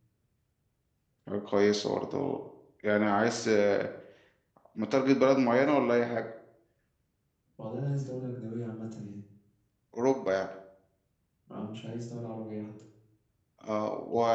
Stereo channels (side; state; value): both; identical; correlation 1.00